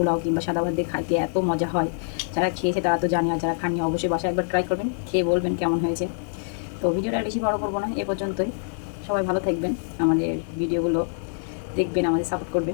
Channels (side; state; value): right; silent; 62 dB below the other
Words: কিংবা সাদা ভাত দিয়ে খাইতে এত মজা হয়, যারা খেয়েছে তারা তো জানে, আর যারা খাননি অবশ্যই বাসায় একবার ট্রাই করবেন, খেয়ে বলবেন কেমন হয়েছে। তো ভিডিওটা আর বেশি বড় করবো না, এ পর্যন্তই। সবাই ভালো থাকবেন, আমাদের ভিডিওগুলো দেখবেন, আমাদের সাপোর্ট